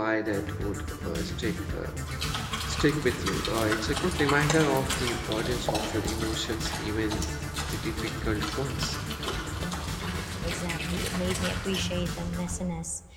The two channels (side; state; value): both; identical; correlation 1.00